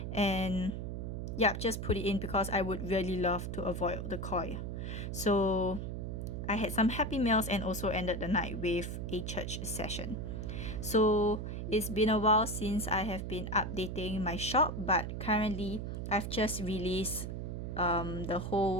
and just put it in because I would really love to avoid the koi. So I had some happy meals and also ended the night with a church session. So it's been a while since I have been updating my shop, but currently I've just released the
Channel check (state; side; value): noise; right; hum, 4 dB below the sound